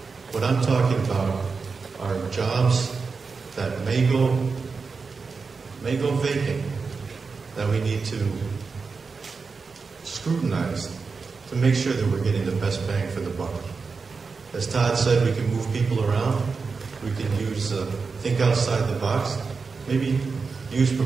What I'm talking about are jobs that may go vacant, that we need to scrutinize to make sure that we're getting the best bang for the buck. As Todd said, we can move people around. We can use think outside the box. Maybe use per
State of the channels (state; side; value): quieter; left; 4.8 dB